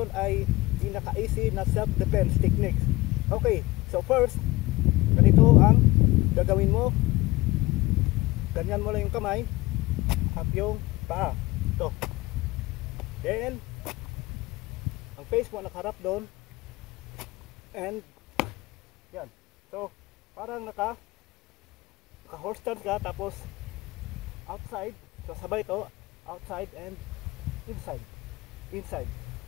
ay pinaka-easy na self-defense techniques. Okay, so first, ganito ang gagawin mo. Ganyan mo lang yung kamay, up yung paa. Ito. Then, ang face mo nakaharap doon. And, yan. So, parang naka-horse stance ka, tapos outside. So sabay ito, outside and inside. Inside.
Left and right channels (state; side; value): quieter; right; 20.0 dB